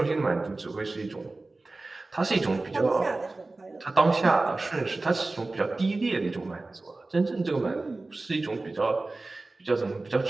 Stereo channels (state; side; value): quieter; left; 3.2 dB